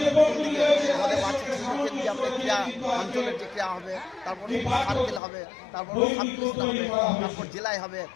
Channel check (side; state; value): right; drops out; at 5.2 s